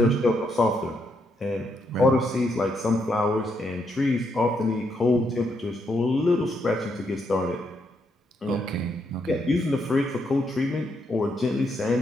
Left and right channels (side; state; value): both; normal; correlation 0.77